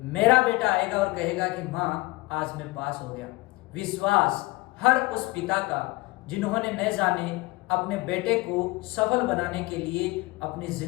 मेरा बेटा आएगा और कहेगा कि माँ आज मैं पास हो गया। विश्वास हर उस पिता का जिन्होंने न जाने अपने बेटे को सफल बनाने के लिए अपनी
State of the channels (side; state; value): right; quieter; 22.5 dB